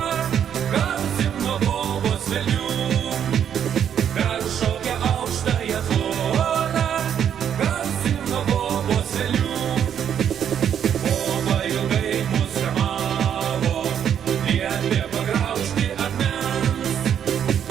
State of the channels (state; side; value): quieter; left; 8.9 dB